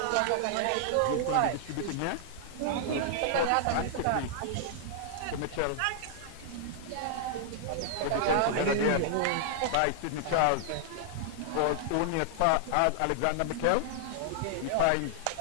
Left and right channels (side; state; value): both; different; correlation -0.01